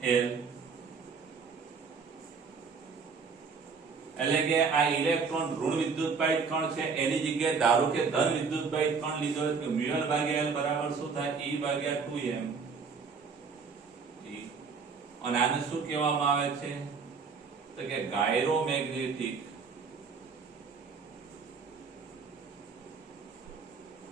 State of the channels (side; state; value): left; quieter; 5.3 dB